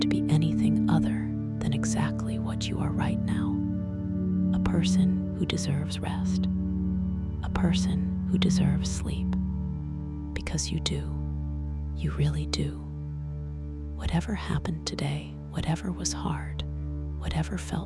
be anything other than exactly what you are right now. A person who deserves rest. A person who deserves sleep. Because you do. You really do. Whatever happened today, whatever was hard, whatever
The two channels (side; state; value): both; identical; correlation 1.00